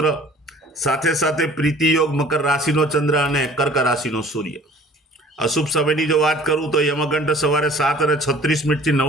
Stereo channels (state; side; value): normal; both; correlation 0.50